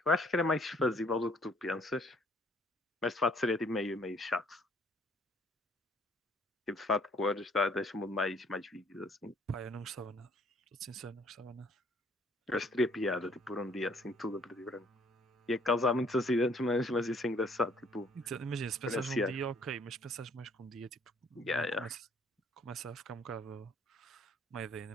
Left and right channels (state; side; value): normal; both; correlation 0.61